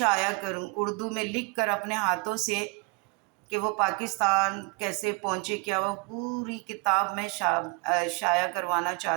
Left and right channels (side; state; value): left; quieter; 29.9 dB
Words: کروں، اردو میں لکھ کر اپنے ہاتھوں سے، کہ وہ پاکستان کیسے پہنچے، کیا وہ پوری کتاب میں شائع کروانا